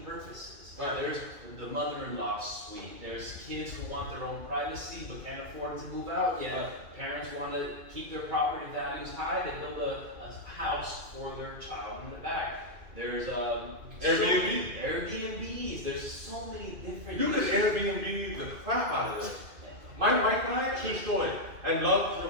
purposes. Right. There's the mother-in-law suite. There's kids who want their own privacy but can't afford to move out yet. Right. Parents want to keep their property values high. They build a house for their child in the back. There's Airbnbs. There's so many different. You could Airbnb the crap out of this. My wife and I, true story, and love to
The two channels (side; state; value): left; late; 2.4 ms